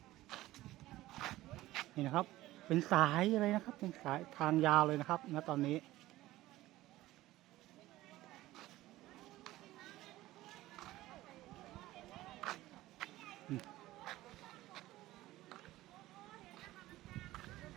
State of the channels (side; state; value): left; quieter; 16.6 dB